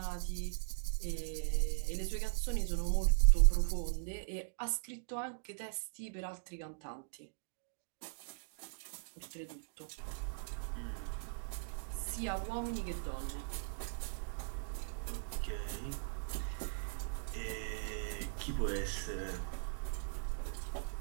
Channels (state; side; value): silent; left; digital silence